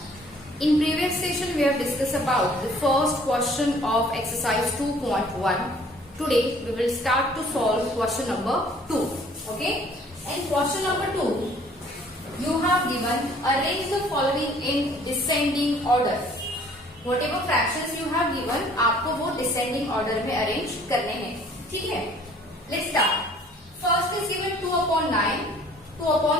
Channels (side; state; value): both; normal; correlation 0.55